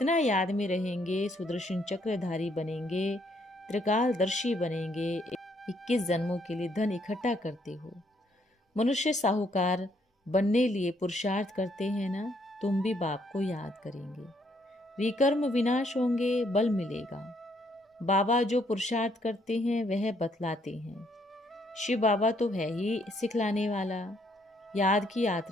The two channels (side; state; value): both; normal; correlation 0.70